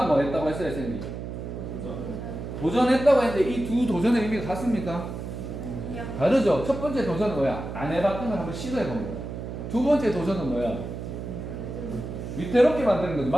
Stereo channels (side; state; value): right; noise; hum, 7 dB below the sound